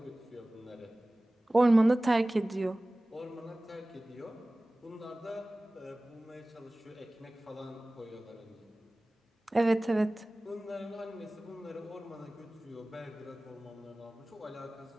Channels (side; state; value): both; normal; correlation 0.98